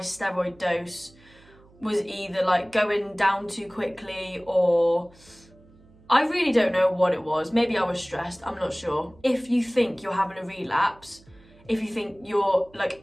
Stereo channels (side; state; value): right; noise; hum, 27 dB below the sound